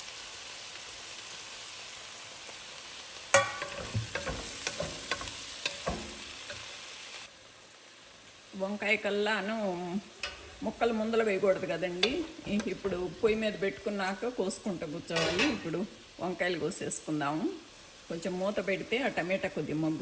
వంకాయ కల్లాను ముక్కలు ముందలు వేయకూడదు కదండి. ఇప్పుడు పొయ్యి మీద పెట్టుకున్నాక కోసుకుంటూ కూర్చోవాలి. ఇప్పుడు వంకాయలు కోసేసుకుందాము. కొంచెం మూత పెడితే ఆ టమాటా కొద్దిగా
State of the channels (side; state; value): both; identical; correlation 1.00